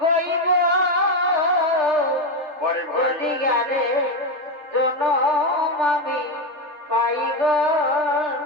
কইব যদি গেলে জনম আমি পাইব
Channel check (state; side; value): late; left; 3.3 ms